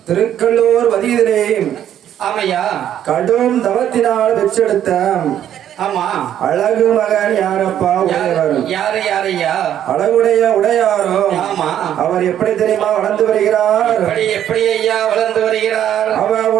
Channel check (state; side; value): quieter; left; 10.6 dB